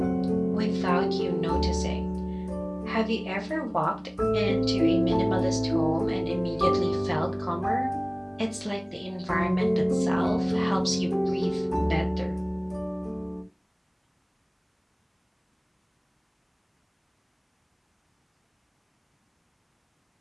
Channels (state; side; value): identical; both; correlation 1.00